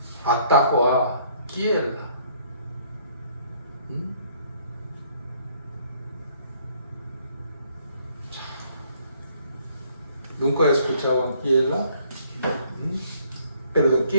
atacó a Keilah. ¿Nunca escuchaban Keilah?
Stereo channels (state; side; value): inverted; both; correlation -0.64